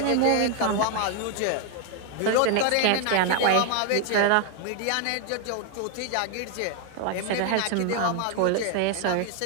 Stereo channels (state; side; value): different; both; correlation 0.00